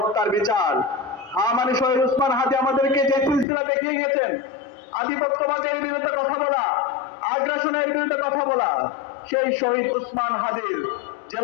বিচার, হা মানে শহীদ উসমান হাদি আমাদেরকে যে সিলসিলা দেখিয়ে গেছেন, আধিপত্যবাদের বিরুদ্ধে কথা বলা, আগ্রাসনের বিরুদ্ধে কথা বলা, সেই শহীদ উসমান হাদির যে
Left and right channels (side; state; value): right; drops out; at 3.5 s